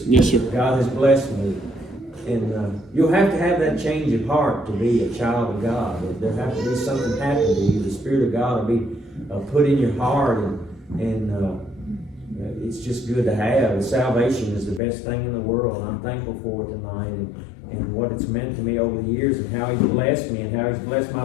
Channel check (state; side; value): drops out; right; at 14.8 s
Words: God has blessed me. And you'll have to have that change of heart to be a child of God. There has to be something happen to you. The Spirit of God will be put in your heart, and it's just good to have. Salvation is the best thing in the world, and I'm thankful for it tonight, and what it's meant to me over the years, and how He's blessed me, and how He's blessed my